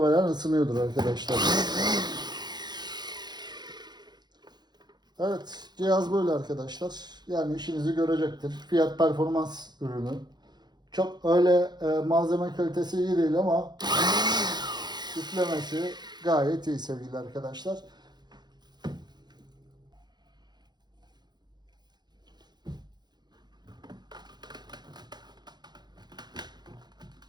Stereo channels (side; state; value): left; late; 0.21 ms